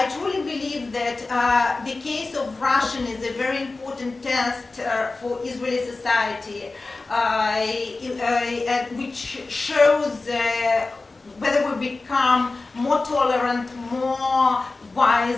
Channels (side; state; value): right; quieter; 3.5 dB